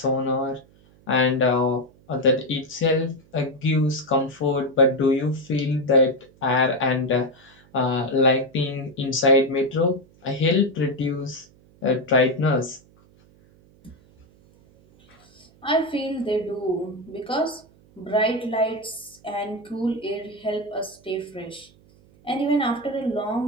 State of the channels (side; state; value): right; noise; hum, 28 dB below the sound